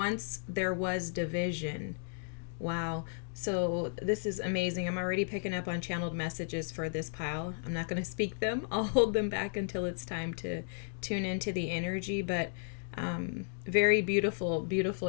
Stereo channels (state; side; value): silent; right; digital silence